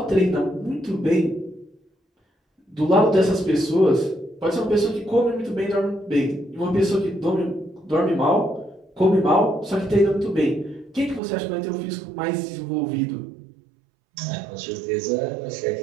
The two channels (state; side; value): drops out; left; at 11.2 s